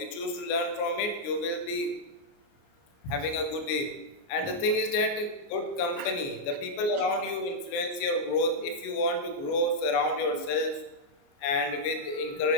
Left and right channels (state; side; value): late; right; 29 ms